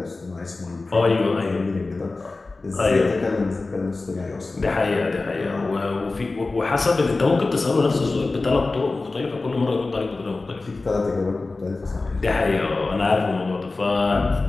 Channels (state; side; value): quieter; right; 3.5 dB